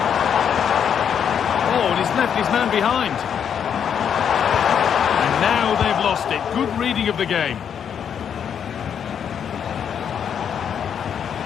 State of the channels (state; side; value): quieter; right; 8.1 dB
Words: Oh, and he's left his man behind. Now they've lost it. Good reading of the game.